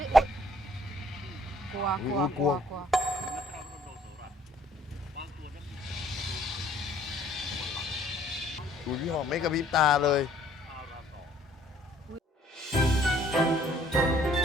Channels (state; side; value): normal; both; correlation 0.60